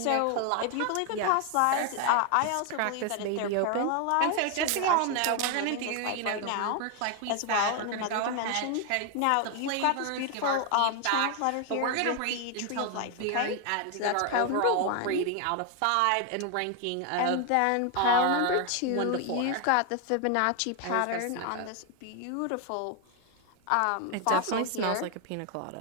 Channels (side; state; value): both; different; correlation 0.01